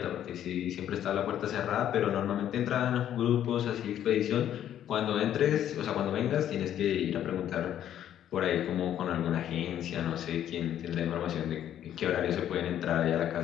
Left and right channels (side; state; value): right; quieter; 10.8 dB